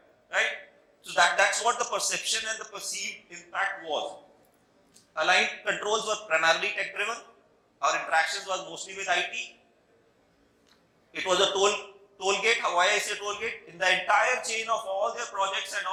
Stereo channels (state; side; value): identical; both; correlation 1.00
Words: Right? So that's what the perception and the perceived impact was. Aligned controls were primarily tech driven. Our interactions was mostly with IT. It was a toll gate. Why I say toll gate? In the entire chain of all their projects and